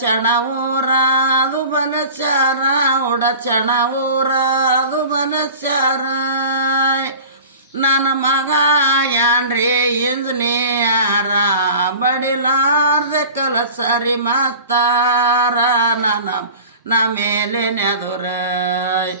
ಊರಾದು ಬಲಚಾರ ಉಡಚಣ ಊರಾದು ಬಲಚಾರ ನನ್ನ ಮಗ ಯಾನ್ರಿ ಇಂಜಿನಿಯರ ಬಡಿಲಾರ್ದೆ ಕಲಸರಿ ಮಾಸ್ತಾರ ನನ್ನ ಮೇಲೆ ನೆದುರ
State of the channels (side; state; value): both; inverted; correlation -0.40